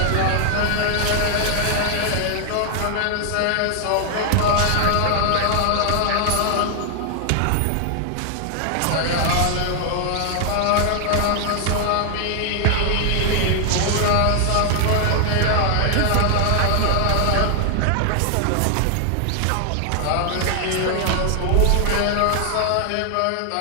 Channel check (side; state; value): both; different; correlation 0.00